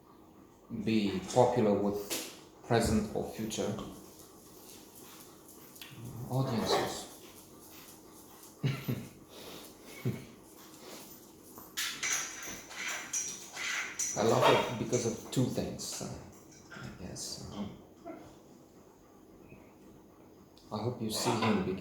be popular with present or future audiences. I love it because of two things, I guess. I hope you see him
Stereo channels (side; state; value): both; identical; correlation 1.00